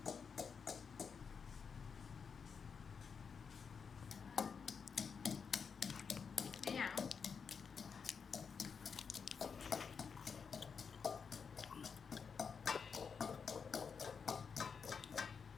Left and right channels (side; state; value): right; quieter; 6.0 dB